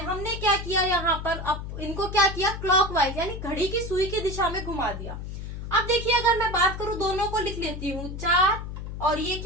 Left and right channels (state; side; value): noise; left; hum, 7 dB below the sound